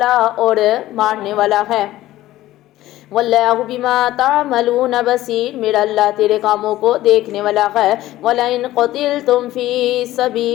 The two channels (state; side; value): quieter; right; 15.4 dB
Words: اور مارنے والا ہے۔ واللہ بما تعملون بصیر، میرا اللہ تیرے کاموں کو دیکھنے والا ہے۔ وَلَئِن قُتِلْتُمْ فِي